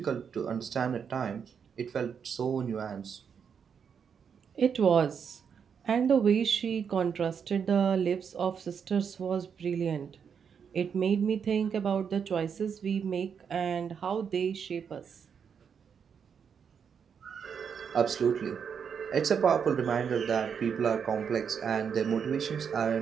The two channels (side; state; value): left; quieter; 7.0 dB